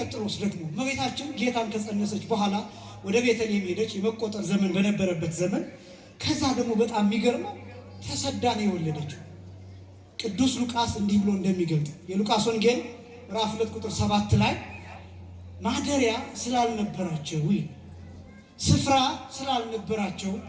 ደግሞ እመቤታችን ጌታን ከጸነሰች በኋላ ወደ ቤተልሔም ሄደች። የመቆጠር ዘመን በነበረበት ዘመን ከዛ ደግሞ በጣም የሚገርመው ተሰዳ ነው የወለደችው። ቅዱስ ሉቃስ እንዲህ ብሎ እንደሚገልጥ የሉቃስ ወንጌል ምዕራፍ 2 ቁጥር 7 ላይ ማደሪያ ስላልነበራቸው ስፍራ ስላልነበራቸው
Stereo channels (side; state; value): both; identical; correlation 1.00